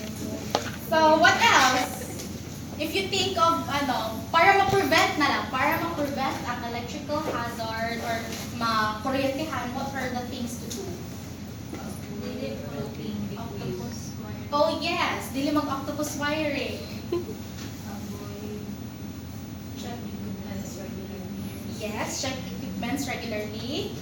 So, what else? If you think of, para ma-prevent ang electrical hazard or ma-kuryentehan, what are the things to do? Oh yes, dili mag-octopus wiring. Yes, check equipments regularly.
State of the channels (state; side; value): identical; both; correlation 1.00